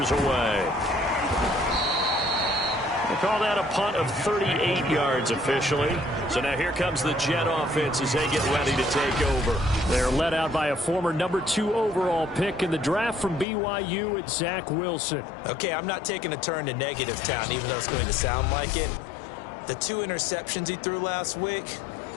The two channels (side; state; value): right; drops out; at 13.5 s